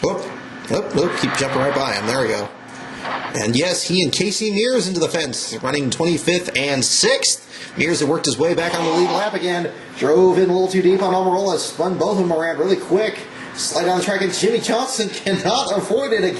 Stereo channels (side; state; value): both; identical; correlation 1.00